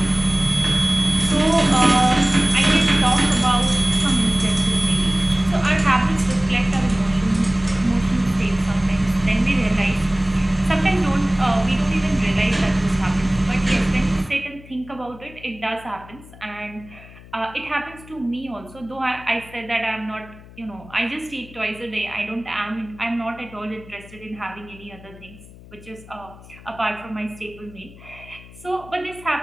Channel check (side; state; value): left; noise; hum, 20 dB below the sound